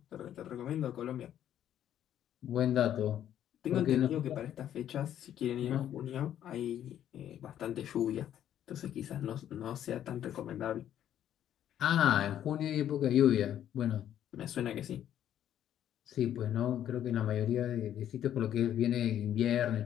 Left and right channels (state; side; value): quieter; right; 10.8 dB